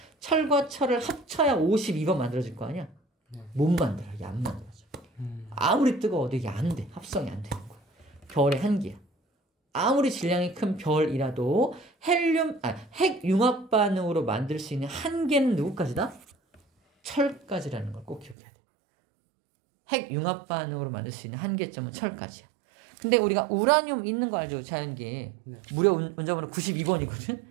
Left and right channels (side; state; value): left; drops out; at 18.4 s